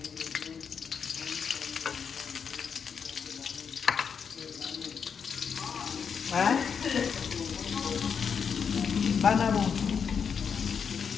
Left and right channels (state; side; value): quieter; right; 6.6 dB